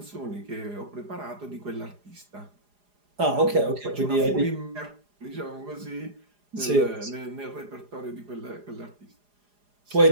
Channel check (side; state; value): left; late; 4.9 ms